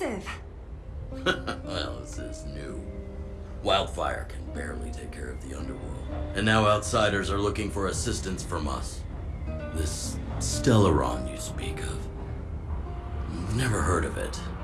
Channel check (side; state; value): both; identical; correlation 1.00